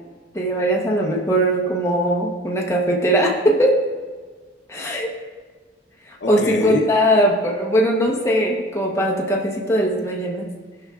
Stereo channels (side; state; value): both; normal; correlation 0.44